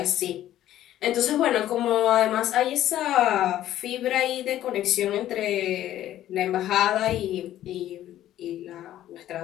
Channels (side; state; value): right; quieter; 12.8 dB